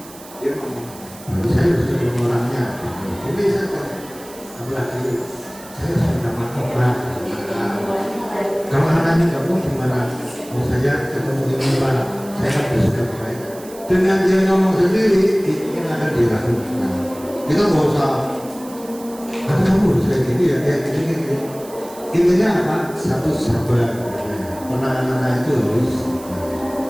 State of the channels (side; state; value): right; noise; hiss, 19 dB below the sound